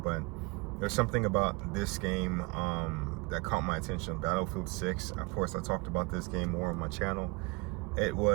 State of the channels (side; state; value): left; quieter; 27.1 dB